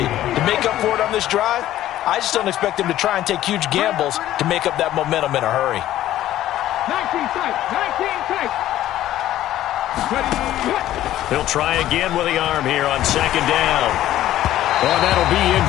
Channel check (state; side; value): quieter; right; 13.4 dB